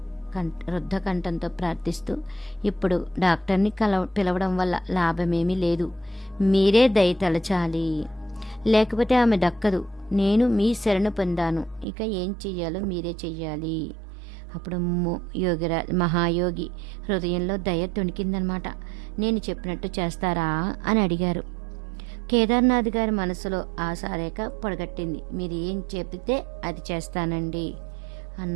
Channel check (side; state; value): left; drops out; at 11.9 s